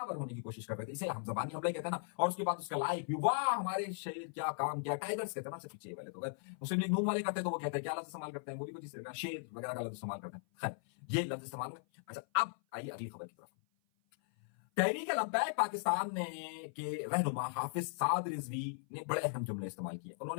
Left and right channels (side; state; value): right; silent; 52 dB below the other